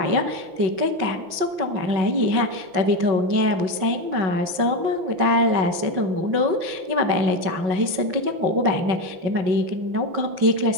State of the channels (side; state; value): left; late; 5.4 ms